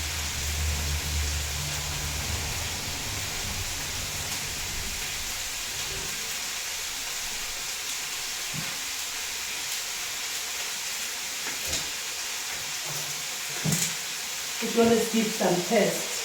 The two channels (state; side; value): identical; both; correlation 1.00